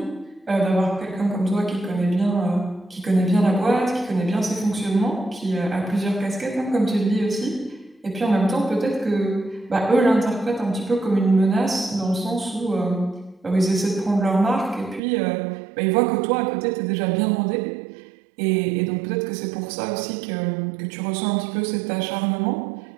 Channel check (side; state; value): left; drops out; at 15.0 s